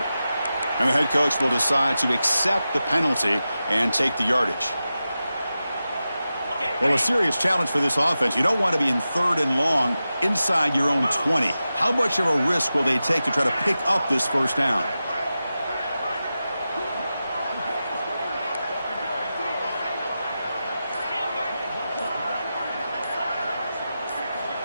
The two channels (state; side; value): inverted; both; correlation -0.92